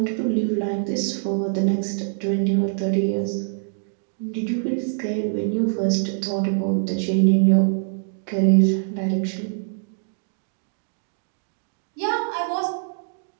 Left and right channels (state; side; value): silent; left; digital silence